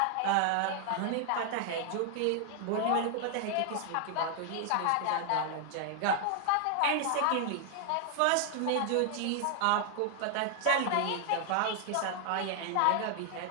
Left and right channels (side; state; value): both; different; correlation 0.00